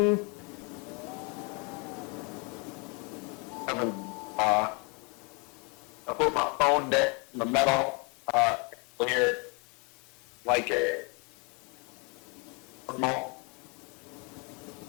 I put my phone down in the metal Here, like a remote.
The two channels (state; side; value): quieter; right; 32.1 dB